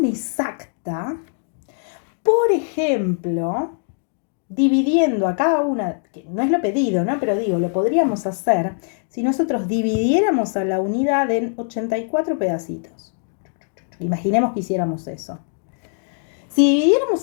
exacta, por ejemplo, dividiendo a cada una, que no es lo pedido, ¿no? Pero digo, lo podríamos hacer si nosotros dividiéramos a la unidad en 84 pedacitos. Imaginemos que hiciéramos eso. Si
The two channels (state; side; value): silent; right; 58 dB below the other